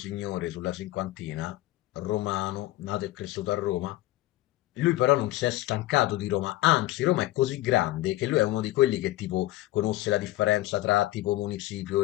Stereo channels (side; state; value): right; quieter; 16.6 dB